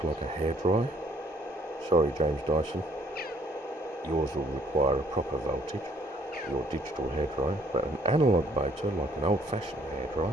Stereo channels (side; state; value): both; normal; correlation 0.63